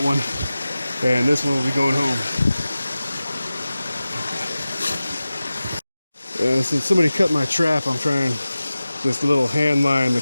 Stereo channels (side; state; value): both; inverted; correlation -0.96